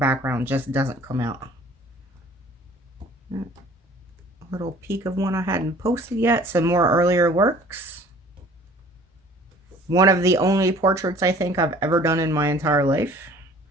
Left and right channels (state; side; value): normal; both; correlation 0.51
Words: just doesn't come out. Little peek of one I hadn't posted yet. Some more earlier works. One of the only portraits I think I've ever done in my entire life.